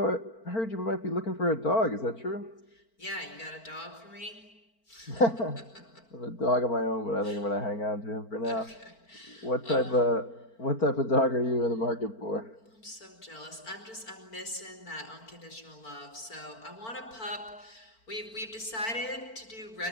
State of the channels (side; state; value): right; late; 4.5 ms